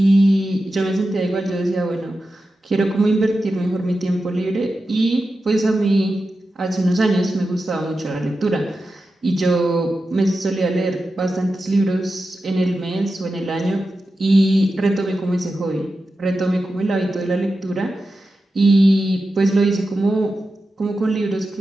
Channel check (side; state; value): both; normal; correlation 0.91